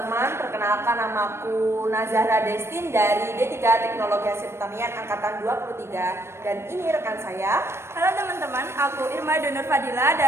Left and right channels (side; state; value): left; late; 0.12 ms